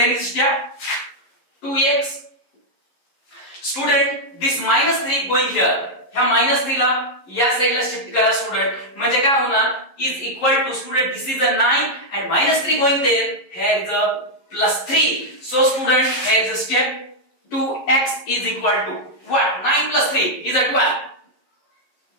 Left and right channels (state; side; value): late; right; 11 ms